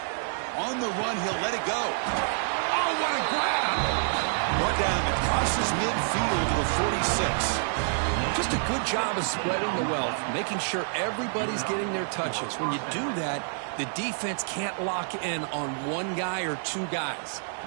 On the run, he'll let it go. Oh, what a grab! Brought down, it crosses midfield to the 46. Just a good job of spreading the wealth, making sure everybody's getting their touches. When you do that, the defense can't lock in on one guy or two guys.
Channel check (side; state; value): left; silent; 55 dB below the other